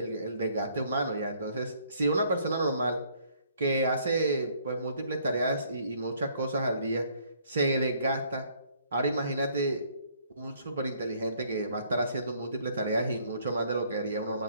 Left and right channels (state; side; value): inverted; both; correlation -0.63